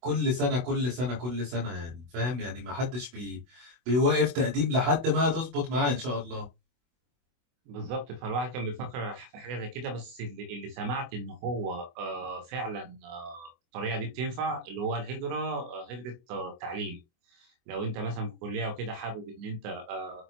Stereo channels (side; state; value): left; late; 24 ms